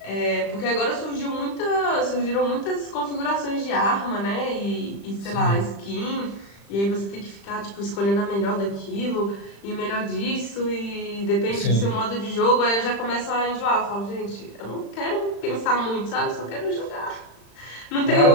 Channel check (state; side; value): late; right; 35 ms